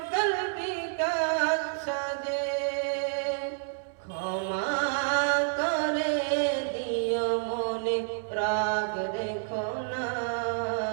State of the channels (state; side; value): silent; left; 58 dB below the other